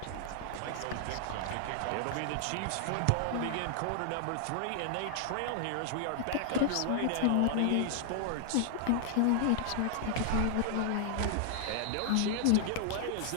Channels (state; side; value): different; both; correlation 0.00